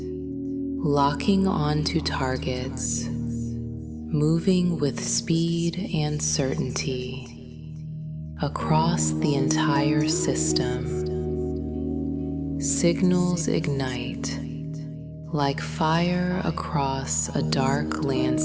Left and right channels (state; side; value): identical; both; correlation 1.00